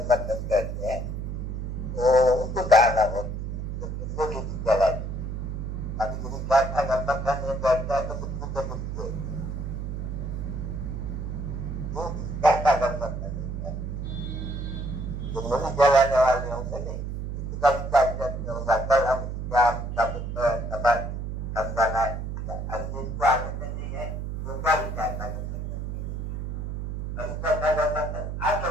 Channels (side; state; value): right; noise; hum, 4 dB below the sound